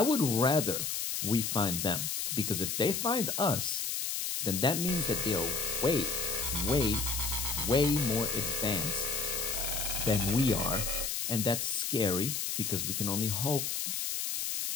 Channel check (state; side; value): noise; left; hiss, 1 dB below the sound